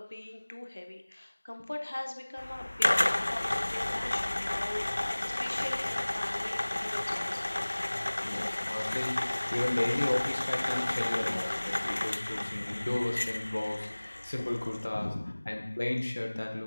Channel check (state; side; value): inverted; both; correlation -1.00